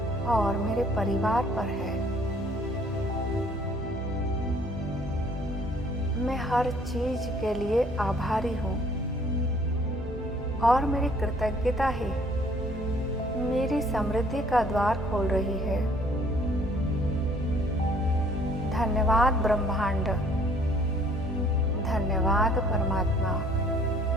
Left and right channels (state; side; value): normal; both; correlation 0.59